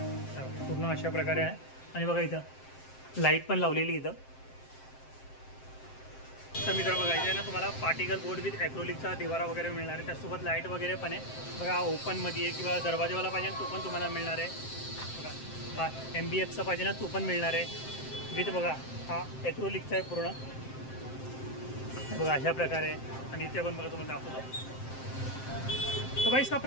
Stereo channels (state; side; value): late; right; 7.6 ms